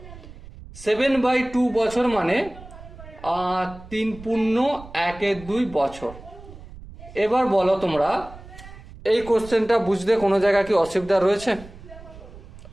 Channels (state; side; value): noise; right; rumble, 17 dB below the sound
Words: 7/2 বছর মানে 3 পূর্ণ 1/2 বছর। এবার বলো তোমরা, এই কোশ্চেনটা বুঝতে কোনো জায়গায় কি অসুবিধা রয়েছে?